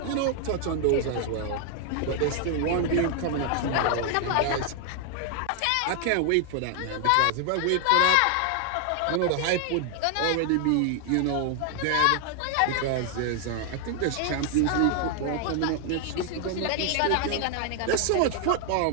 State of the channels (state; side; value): different; both; correlation 0.00